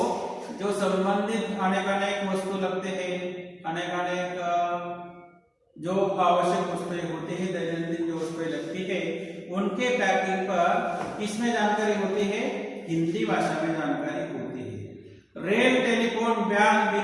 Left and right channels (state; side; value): identical; both; correlation 1.00